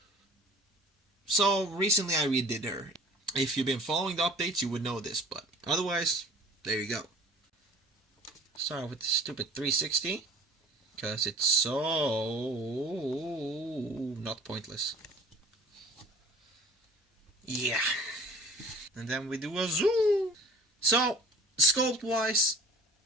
So recently I redid her. If you've been following the updates, you would know this, but otherwise, there you go. Start with the stupid 360. Because it's so not pointless. Yeah. And then we do a zoom. So, sculpt wise,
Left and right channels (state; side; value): normal; both; correlation 0.46